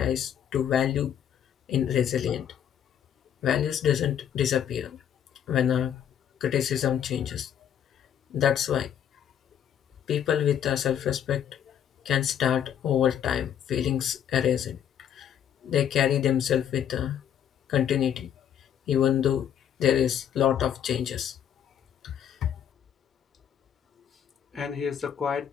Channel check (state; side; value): quieter; right; 9.4 dB